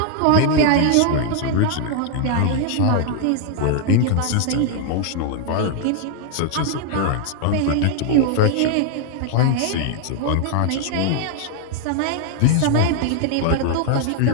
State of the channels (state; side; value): different; both; correlation 0.00